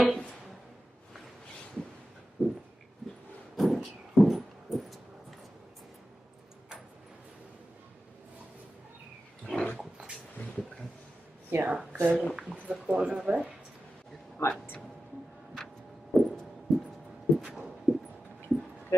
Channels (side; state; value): both; normal; correlation 0.93